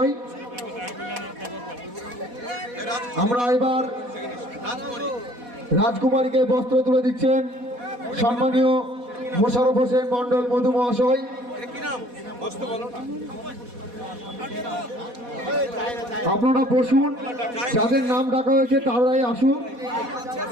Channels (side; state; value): left; late; 4.1 ms